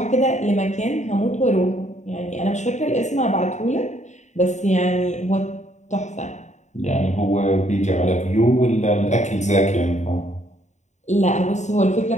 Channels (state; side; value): late; right; 0.34 ms